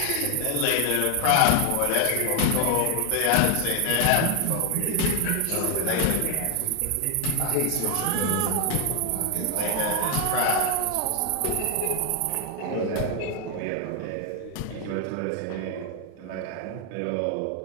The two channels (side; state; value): both; different; correlation 0.00